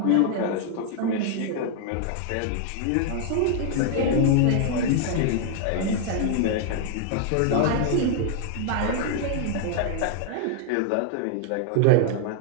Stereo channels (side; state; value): both; different; correlation 0.00